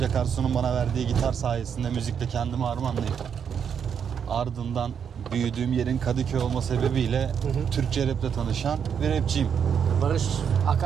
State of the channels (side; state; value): left; quieter; 7.5 dB